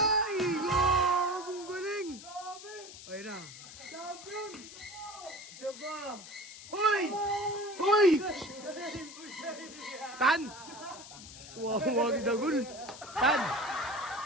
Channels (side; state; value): left; noise; hiss, 15 dB below the sound